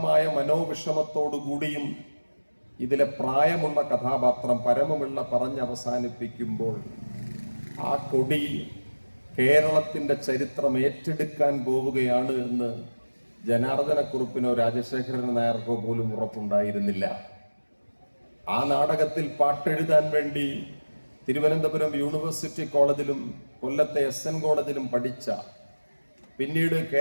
മനോവിഷമത്തോടുകൂടിയും ഇതിലെ പ്രായമുള്ള കഥാപാത്രം പരമപിള്ള പറഞ്ഞവസാനിപ്പിക്കുമ്പോൾ ആ കൊടി കേരളത്തിന്റെ ചരിത്രം ഏറ്റെടുക്കാൻ പോവുകയാണ് എന്ന് ജനാർദ്ദനക്കുറുപ്പിനോ രാജശേഖരൻ നായർക്കോ പോലും ഉറപ്പുണ്ടായിരുന്നില്ല. ആ നാടകത്തിൽ പാട്ടെഴുതാൻ വേണ്ടി തിരുവനന്തപുരം യൂണിവേഴ്സിറ്റി കോളേജിലും കൊല്ലത്തെ SN കോളേജിലും പഠിച്ച, പിന്നീട്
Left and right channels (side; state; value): both; inverted; correlation -1.00